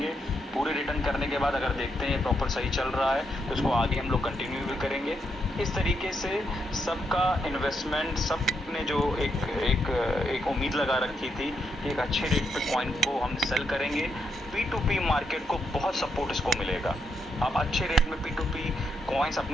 पूरे रिटर्न करने के बाद अगर देखते हैं प्रॉपर सही चल रहा है तो इसको आगे हम लोग कंटिन्यू भी करेंगे। इस तरीके से सबका इन्वेस्टमेंट, सबने जो एक उम्मीद लगा रखी थी कि एक अच्छे रेट पे कॉइन को हम सेल करेंगे, P2P मार्केट को बहुत सपोर्ट इसको मिलेगा। आप अच्छे रेट में P2P कॉइन्स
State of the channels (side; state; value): both; normal; correlation 0.80